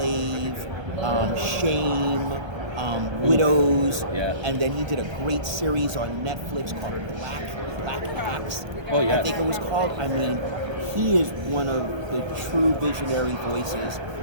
Shame, Widows, Yeah. and then he did a great series on Netflix called Black Axe. Oh, yes. I think it was called. I mean, he is one of the true visionary voices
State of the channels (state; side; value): late; left; 1.3 ms